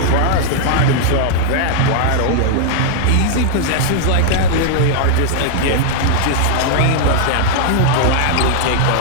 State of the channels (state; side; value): different; both; correlation 0.00